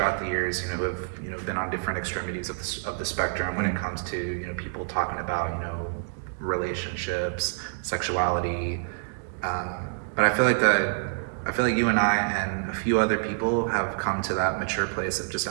the years, you know, who have, you know, been on different extremities of the spectrum when it comes to, you know, people talking about, you know, relationships, sexuality. But I feel like you and I and a few other people have come to that mature place of just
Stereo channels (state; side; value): silent; left; digital silence